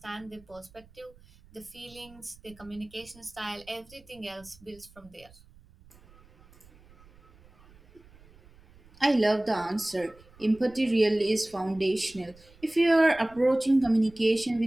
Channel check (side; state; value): right; noise; rumble, 26 dB below the sound